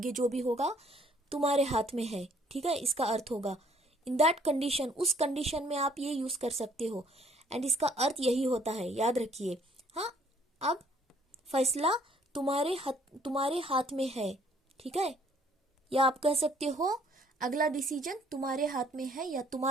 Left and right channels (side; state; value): both; normal; correlation 0.61